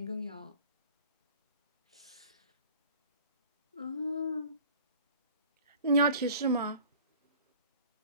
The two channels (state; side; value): inverted; both; correlation -0.47